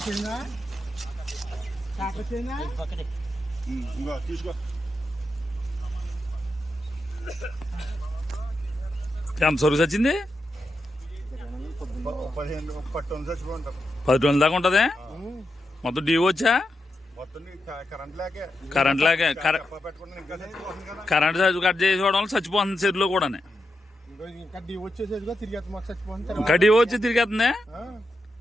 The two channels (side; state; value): both; normal; correlation 0.86